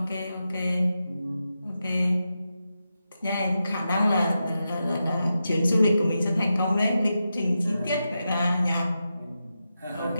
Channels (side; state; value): both; inverted; correlation -0.89